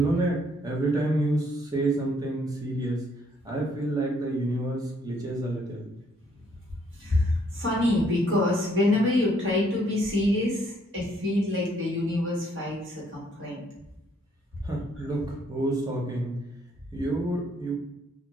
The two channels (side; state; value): both; normal; correlation 0.67